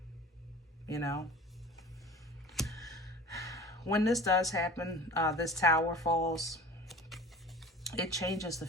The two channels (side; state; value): both; normal; correlation 0.40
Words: you know. When this does happen, this tower falls, it changes the